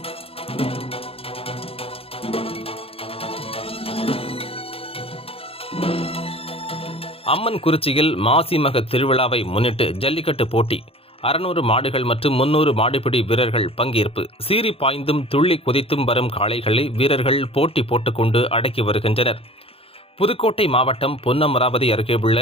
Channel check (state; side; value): late; right; 0.27 ms